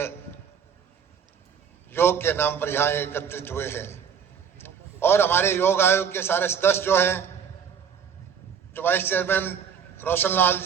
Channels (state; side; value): quieter; left; 7.4 dB